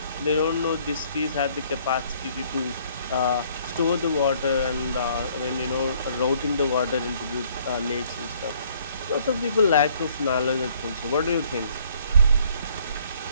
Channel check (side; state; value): both; inverted; correlation -0.61